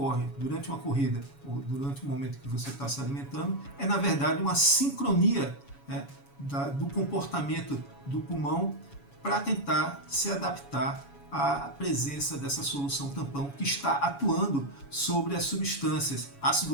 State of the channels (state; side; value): late; right; 7.1 ms